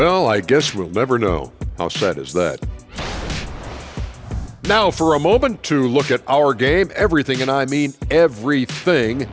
I guess we'll never know. How sad is that? Now, for a moment, to look at our game. Everything, and I mean everything,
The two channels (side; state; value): both; identical; correlation 1.00